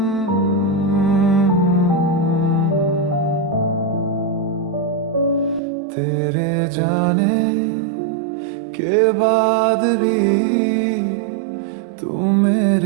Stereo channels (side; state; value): left; drops out; at 5.6 s